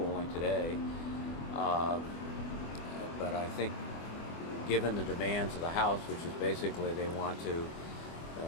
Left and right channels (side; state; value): right; late; 24 ms